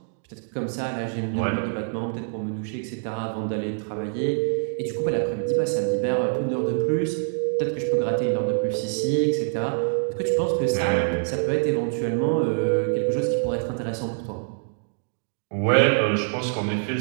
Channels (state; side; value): silent; left; digital silence